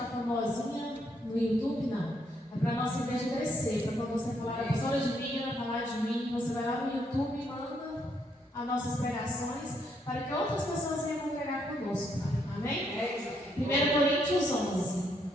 famosinha no YouTube, não. É para a nossa igreja crescer. Para quando você falar a pessoa de mim, ela falar de mim, você vai lá no YouTube e manda as nossas pregações para que outras pessoas venham congregar conosco. Amém? 1 Coríntios 11.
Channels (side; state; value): both; normal; correlation 0.74